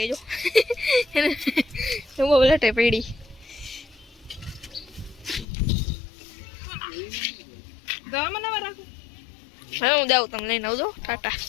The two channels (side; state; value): right; drops out; at 5.5 s